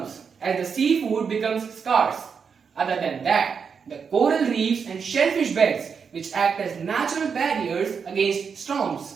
as the seafood becomes scarce. Other than that, the coral reefs and shellfish beds, which act as natural barriers against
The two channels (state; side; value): quieter; left; 6.2 dB